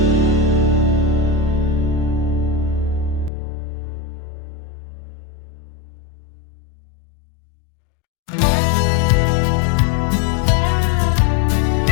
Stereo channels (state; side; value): drops out; right; at 3.3 s